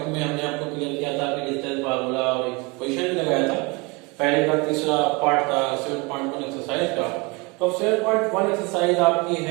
में हमने आपको क्लियर किया था कि डिस्टेंस फार्मूला और एक क्वेश्चन भी लगाया था। पहले का तीसरा पार्ट था 7.1 एक्सरसाइज का। तो 7.1 एक्सरसाइज आपकी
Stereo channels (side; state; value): left; quieter; 27.7 dB